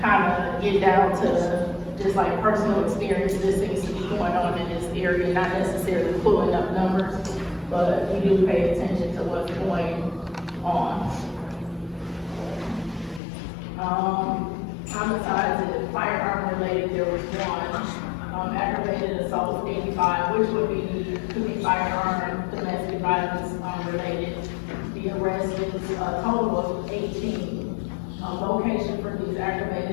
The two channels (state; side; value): drops out; right; at 13.2 s